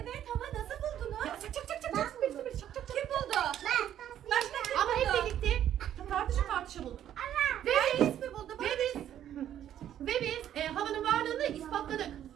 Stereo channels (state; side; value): quieter; left; 10.8 dB